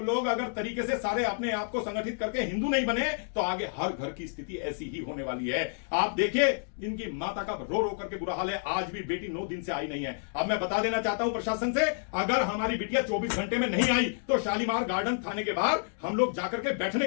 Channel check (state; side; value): silent; right; digital silence